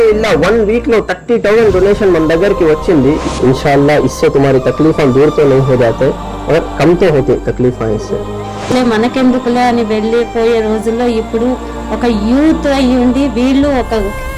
1 వీక్ లో 30,000 డొనేషన్ మన దగ్గరికి వచ్చింది. इंशाअल्लाह इससे तुम्हारी तकलीफें दूर तो नहीं हो जाते और कम तो होती तकलीफें इससे. మనకెందుకులే అని వెళ్ళిపోయే రోజుల్లో ఇప్పుడు ఒక యూత్ అయ్యుండి వీళ్ళు ఒక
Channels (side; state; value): both; identical; correlation 1.00